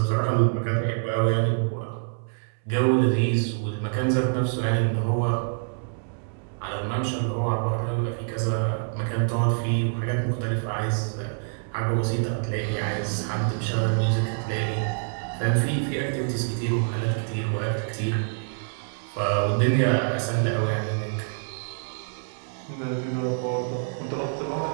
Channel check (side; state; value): left; silent; 61 dB below the other